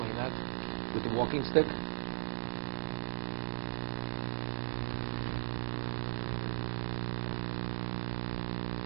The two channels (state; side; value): silent; left; digital silence